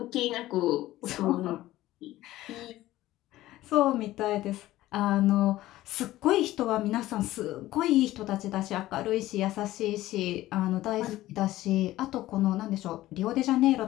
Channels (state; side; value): quieter; right; 15.8 dB